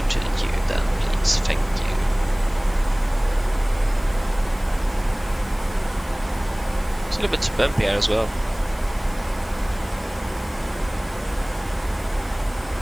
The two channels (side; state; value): left; noise; hiss, 22 dB below the sound